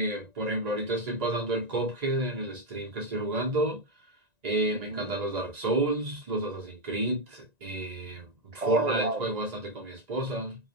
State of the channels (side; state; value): left; late; 1.9 ms